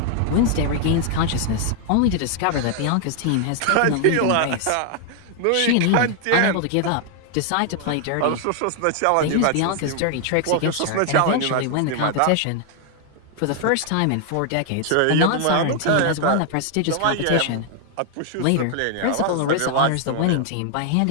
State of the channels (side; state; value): both; different; correlation 0.00